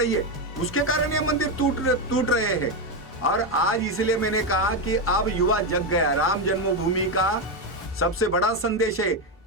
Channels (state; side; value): normal; both; correlation 0.09